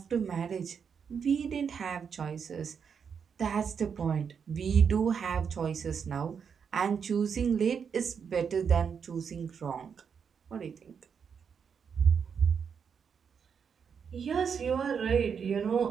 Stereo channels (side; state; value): left; quieter; 6.7 dB